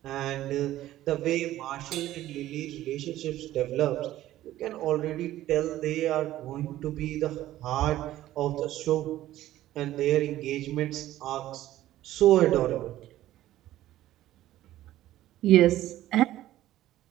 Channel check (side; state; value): left; quieter; 14.3 dB